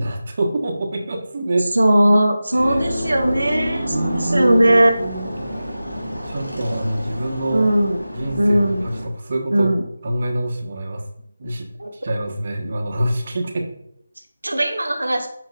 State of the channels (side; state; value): both; inverted; correlation -0.95